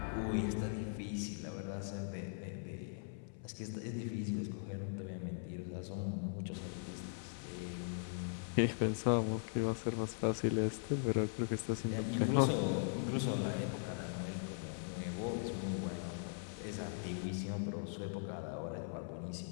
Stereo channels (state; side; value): silent; right; 51 dB below the other